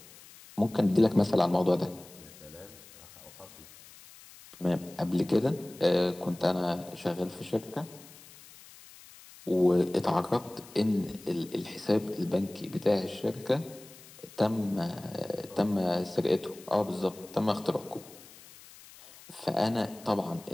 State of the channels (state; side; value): noise; left; hiss, 20 dB below the sound